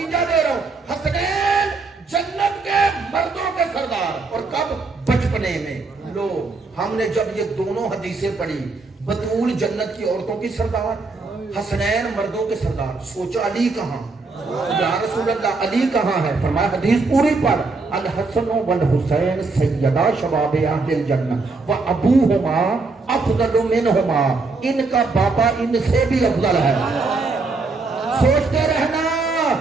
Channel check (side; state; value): left; quieter; 3.9 dB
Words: دے رہا ہوں. حسنین جنت کے مردوں کے سردار. اور کب؟ بچپنے میں. لو ہم نے جب یہ دونوں حدیثیں پڑھی، بطول جنت کی عورتوں کی سردار، حسنین مردوں کے سردار، سوچا علی کہاں؟ یا رسول اللہ علی کہاں ہے؟ فرمایا حدیث پوری پڑھ. الحسن والحسین سیدہ شباب اہل الجنہ وابوہما افضل منہما. ان کا بابا ان سے بھی افضل ہے. سوچتے رہنا